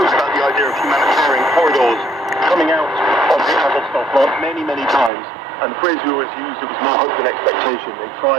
about the idea of humanitarian corridors coming out of the Azovstal plant many, many times, and the phrase we always used, it was no hope and expectation. They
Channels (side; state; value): left; drops out; at 5.1 s